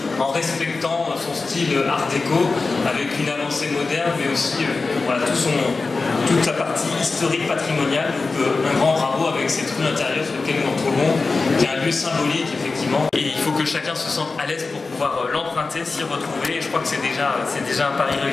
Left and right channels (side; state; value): right; quieter; 4.0 dB